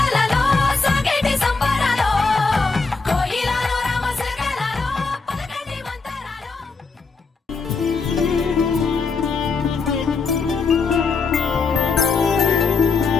సాగేటి సంబరాలో కోయిలలో రామశకలలో పలకండి మంతరాలో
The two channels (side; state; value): right; quieter; 4.5 dB